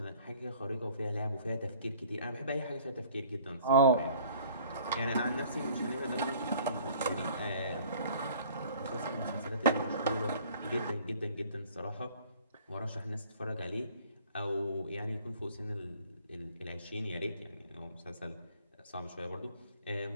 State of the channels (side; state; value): both; inverted; correlation -0.53